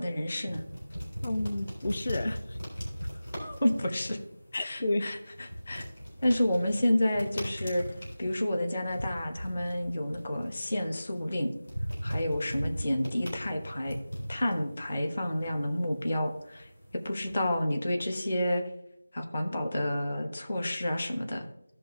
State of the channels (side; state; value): both; inverted; correlation -0.95